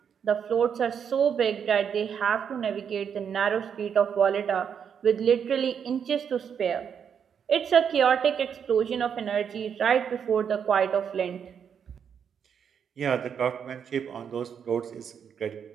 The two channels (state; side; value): quieter; left; 7.6 dB